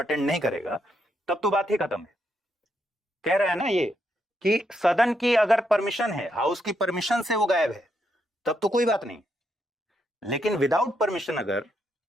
नहीं करेगा, तब तो बात ही खत्म है। कह रहा है ना ये कि सदन की अगर परमिशन है, हाउस की परमिशन से वो गायब है, तब तो कोई बात नहीं। लेकिन विदाउट परमिशन अगर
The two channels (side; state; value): both; normal; correlation 0.79